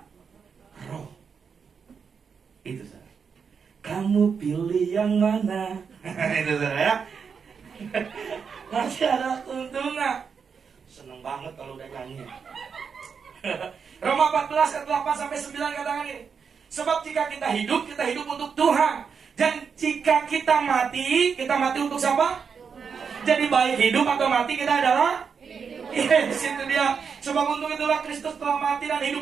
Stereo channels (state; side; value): quieter; left; 6.2 dB